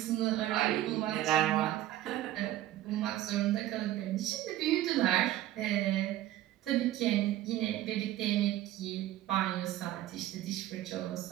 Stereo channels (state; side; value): quieter; left; 14.0 dB